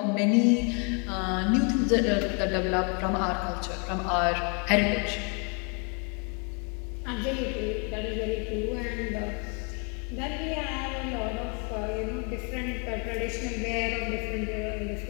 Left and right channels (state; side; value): quieter; right; 35.6 dB